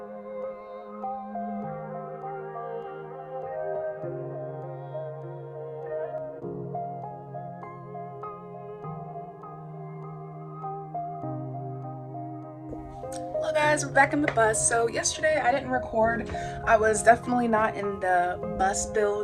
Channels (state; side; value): identical; both; correlation 1.00